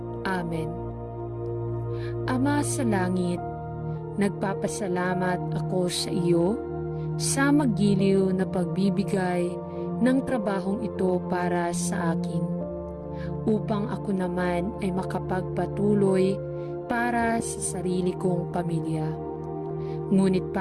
Amen. Ama sa langit, nagpapasalamat ako sa iyo sa magiliw na pagbibigay ng trabahong ito para sa akin, upang ako naman ay makapagpatuloy para sa sarili kong pamilya. Ngunit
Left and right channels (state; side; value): identical; both; correlation 1.00